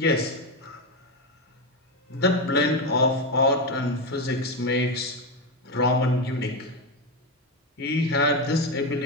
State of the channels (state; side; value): normal; both; correlation 0.12